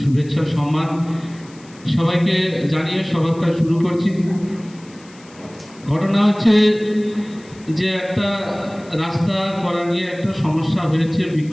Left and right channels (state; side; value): noise; left; hiss, 25 dB below the sound